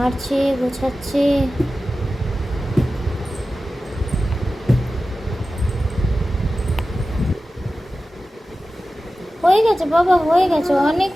গোছাচ্ছে। হয়ে গেছে বাবা, হয়ে গেছে, অনেক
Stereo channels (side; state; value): both; normal; correlation 0.94